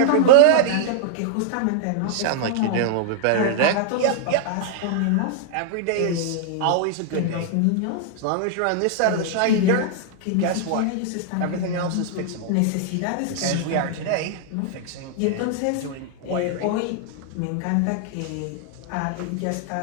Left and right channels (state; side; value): different; both; correlation -0.01